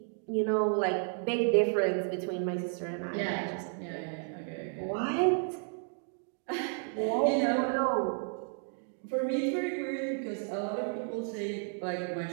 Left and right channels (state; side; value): silent; left; 56 dB below the other